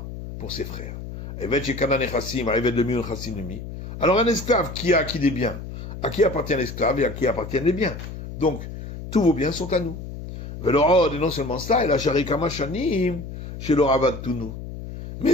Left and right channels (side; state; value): left; noise; hum, 10 dB below the sound